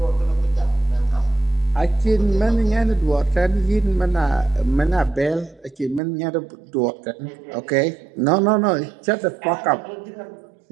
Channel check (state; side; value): drops out; left; at 6.0 s